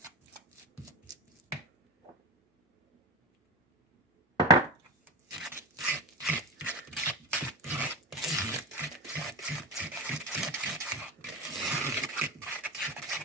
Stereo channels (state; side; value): normal; both; correlation 0.24